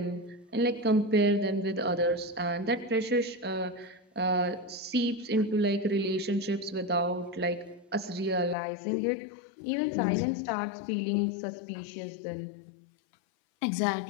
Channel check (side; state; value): right; drops out; at 8.6 s